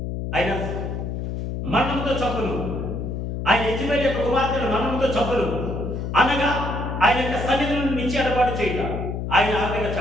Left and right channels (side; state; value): left; noise; hum, 4 dB below the sound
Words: ఆయన మరణంతో చంపును, ఆయన యెజబెలు యొక్క కుమార్తెను మరణంతో చంపును, అనగా ఆయన యొక్క సన్నిధి నుండి నిచ్చి ఎడబాటు చేయట. ఆయన ఆ విధంగా